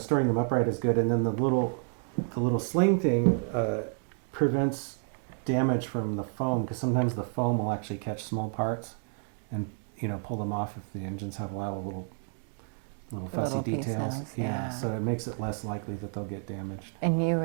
them upright is good. And then the little sling thing prevents damage from the foam, because sometimes the foam will actually catch small parts and pull them off if the engines have a lot of little fussy Little details. pieces, Yeah, yeah. so it makes it less likely that they'll get damaged. And you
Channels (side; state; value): left; silent; 58 dB below the other